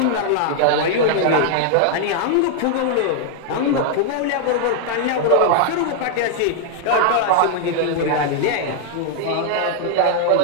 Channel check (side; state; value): both; different; correlation -0.01